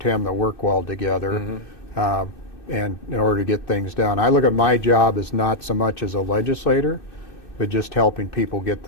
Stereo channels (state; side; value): late; left; 1.2 ms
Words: that work well together. And in order to get things done. I look at my job as not so much as a legislator, but just helping people get